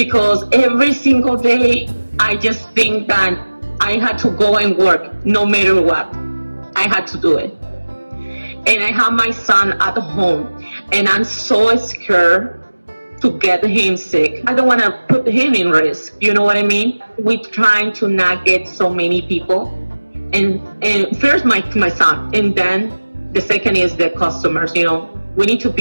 every single day I just think that I had to go and work no matter what. I had to do it. And I have my son at home, and I'm so scared to get him sick. I don't want to put him in risk. You know what I mean? We're trying to not get so many people. And first my son, and then the second is the customers. We need to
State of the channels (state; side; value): inverted; both; correlation -1.00